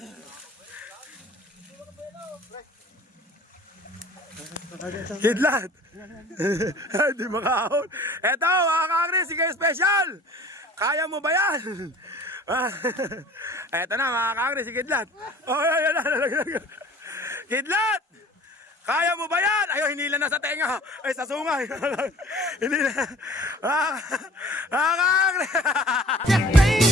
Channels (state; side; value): normal; both; correlation 0.47